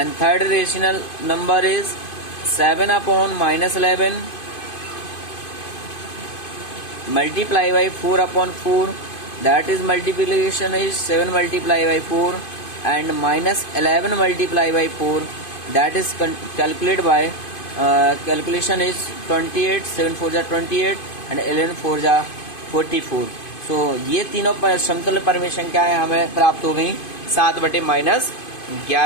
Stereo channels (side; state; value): right; late; 2.5 ms